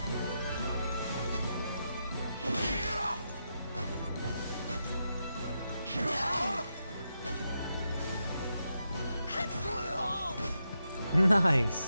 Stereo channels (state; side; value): inverted; both; correlation -0.85